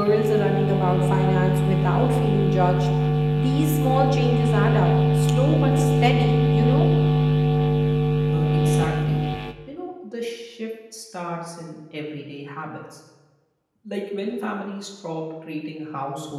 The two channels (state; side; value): identical; both; correlation 1.00